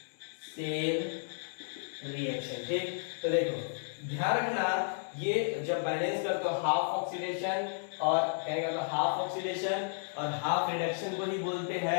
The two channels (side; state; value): right; silent; digital silence